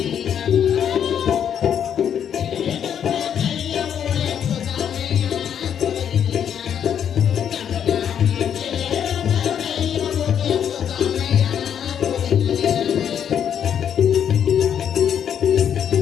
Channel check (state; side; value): quieter; right; 8.7 dB